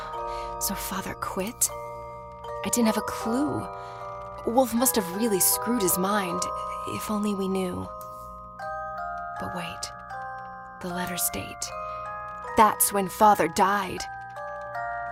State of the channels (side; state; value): both; identical; correlation 1.00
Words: So Father quit? I didn't have a clue. Woolfe must have really screwed his mind, if only we knew. But wait, the letter's date. That's when Father died.